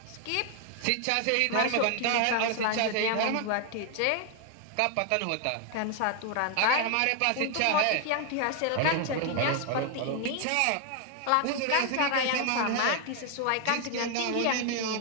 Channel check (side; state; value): both; different; correlation 0.00